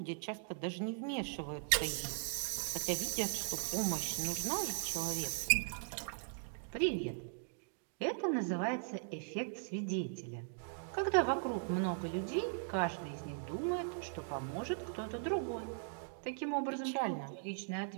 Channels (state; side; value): silent; left; digital silence